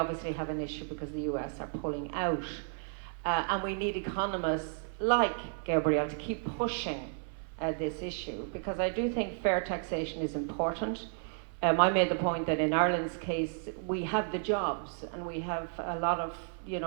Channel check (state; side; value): silent; left; 56 dB below the other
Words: have an issue because the US are pulling out. And we need economists like Gabriel to keep pushing this issue, because I do think fair taxation is important. I made the point that in Ireland's case, we have the jobs and we have a lot of,